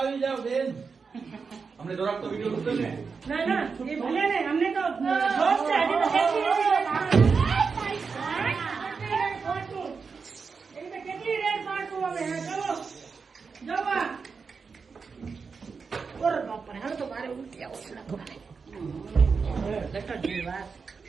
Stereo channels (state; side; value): quieter; left; 5.2 dB